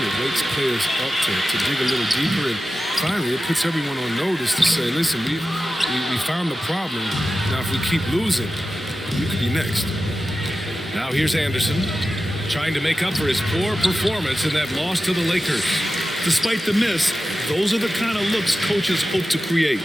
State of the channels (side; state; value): both; normal; correlation 0.93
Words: wakes players up to dig a little deeper. And finally, it puts everyone on notice to say, listen, we found the problem. Now, if we keep losing, we could be next. Now here's Anderson, trying to make up for his poor performance in that loss to the Lakers. Despite the miss, those are the kind of looks coaches hope to create.